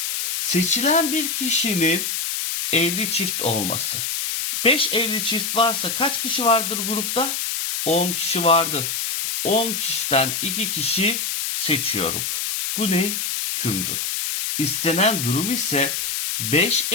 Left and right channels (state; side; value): noise; left; hiss, 1 dB below the sound